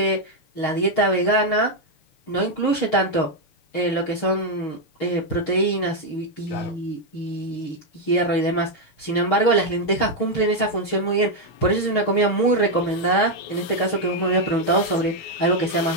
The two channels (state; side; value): late; right; 6.5 ms